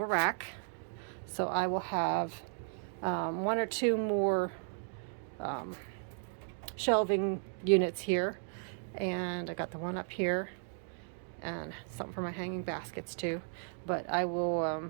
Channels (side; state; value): left; silent; 54 dB below the other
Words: a rack. So I will have one or two more shelving units here, and I got the one up here and something for my hanging baskets too, but I will